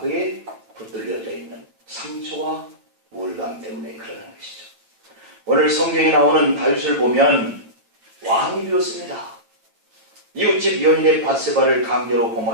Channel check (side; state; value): left; late; 8.9 ms